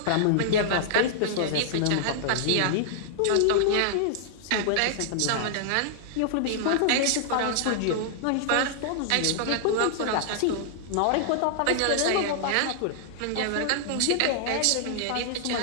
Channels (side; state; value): both; different; correlation -0.01